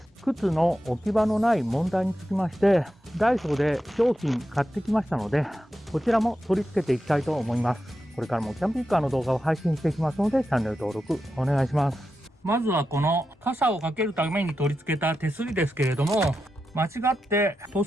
靴の置き場のない問題につきまして、ダイソーで商品買ってきましたので、こちらも取り付けていきたいと思います。これからもキャンピングカーの動画を配信していきますので、チャンネル登録お願いします。まずはこの傘をかけるために取り付けた手すりですけれども、間違って塗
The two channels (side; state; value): both; normal; correlation 0.89